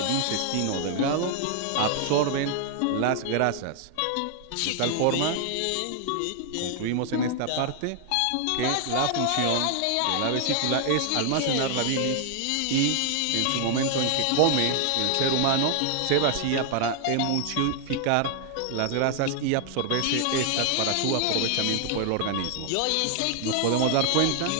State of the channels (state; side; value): different; both; correlation 0.00